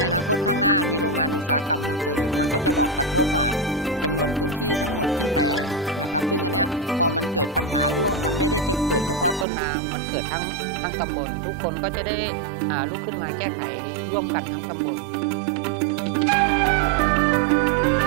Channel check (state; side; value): drops out; left; at 9.5 s